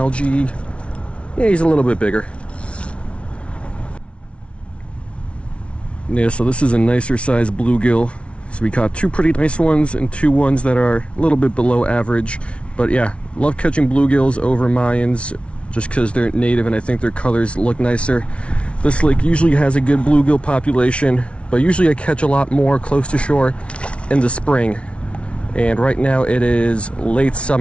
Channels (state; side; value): late; right; 0.060 ms